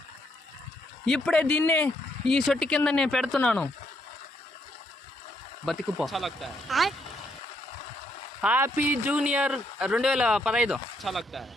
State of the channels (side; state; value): both; normal; correlation 0.74